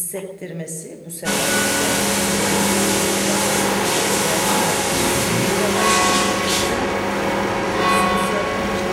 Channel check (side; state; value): both; identical; correlation 1.00